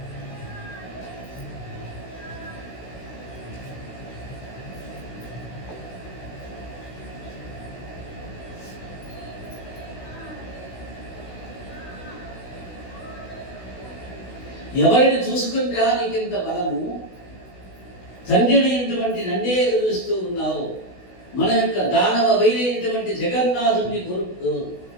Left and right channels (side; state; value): right; late; 16 ms